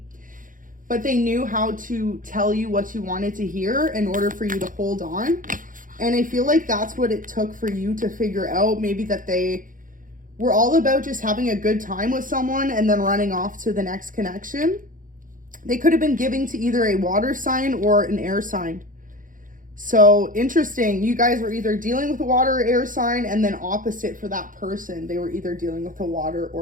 but they knew how to tell you what you wanted to hear in order for you to hold on. And I feel like that's what it took for you to figure out, maybe that they were all about just having a good time with someone and then running off to the next connection. They could have been giving to either a water sign or an air sign. So interesting. You guys were either dealing with a water or air sign, and then opposite for that person. They were either dealing with a water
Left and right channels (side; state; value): left; late; 0.39 ms